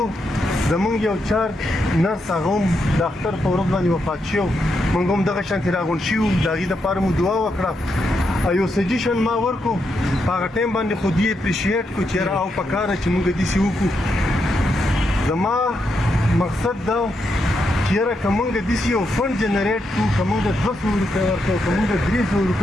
زمونږ یو چار نرس هغه هم د اختر په ورځ باندې وفات شو. موږ هم دغه شانتې راغونډ شوي وو. د هغې دپاره مو دعا وکړه. یو سجیشن ما ورکړو په هغه ټایم باندې خو دې اپریشیټ کړو چې یاره او پکاره چې موږ داسې وکړو. زما مقصد دا چې یاره که موږ داسې یو فنډ جنریټ کړو، که موږ 200 روپۍ ورکړو، که موږ 300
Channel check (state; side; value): normal; both; correlation 0.82